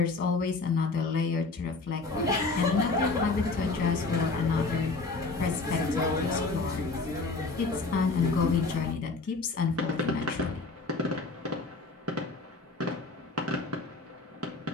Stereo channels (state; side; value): quieter; right; 3.8 dB